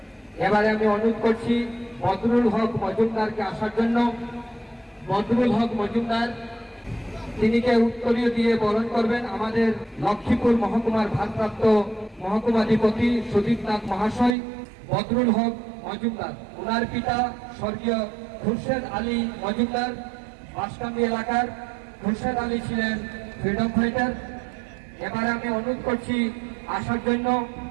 এবারে আমি অনুরোধ করছি বদরুল হক মজুমদারকে আসার জন্য। বদরুল হক মজুমদার তিনিকে উত্তরীয় দিয়ে বরণ করবেন আমাদের লক্ষ্মীপুর মহকুমার ভারপ্রাপ্ত মহকুমাধিপতি সুদীপনাথ মহাশয়। বদরুল হক মজুমদার, ওনার পিতা স্বর্গীয় খুরশেদ আলী মজুমদার বাঁশকান্দি এলাকার। খুরশেদ আলী ছিলেন ফ্রিডম ফাইটার। এবারে আমি অনুরোধ করছি আসার জন্য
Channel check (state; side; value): drops out; left; at 14.4 s